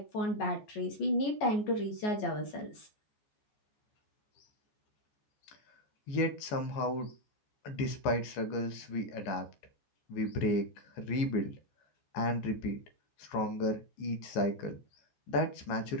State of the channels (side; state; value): right; late; 14 ms